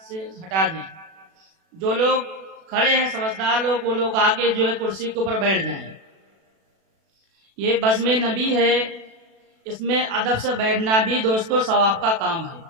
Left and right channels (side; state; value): left; late; 36 ms